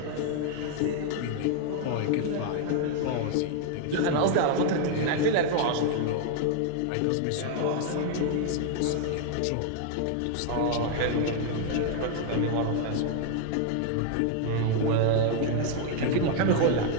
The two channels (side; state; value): both; different; correlation 0.00